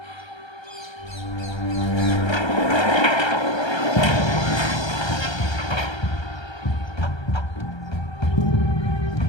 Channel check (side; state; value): right; late; 1.3 ms